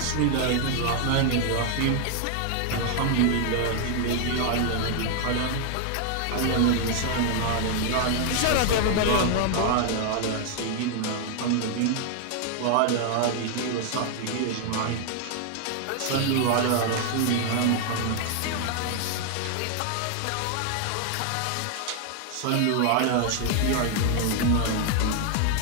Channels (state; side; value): different; both; correlation 0.00